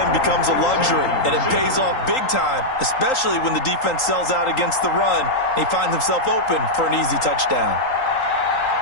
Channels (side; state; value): right; late; 3.8 ms